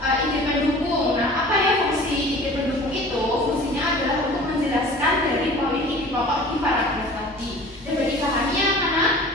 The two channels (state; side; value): normal; both; correlation 0.43